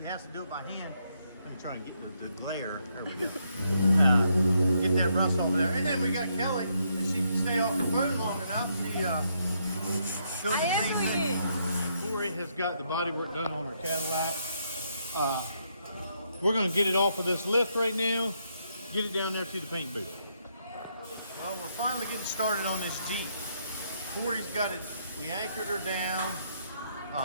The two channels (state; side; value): inverted; both; correlation -0.76